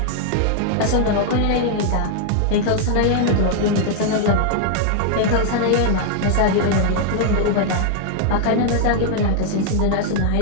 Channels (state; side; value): different; both; correlation 0.00